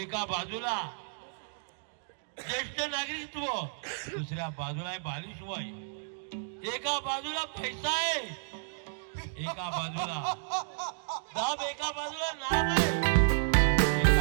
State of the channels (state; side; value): silent; left; digital silence